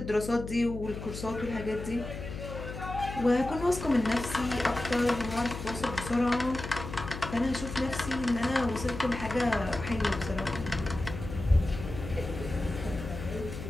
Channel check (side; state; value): left; noise; hum, 9 dB below the sound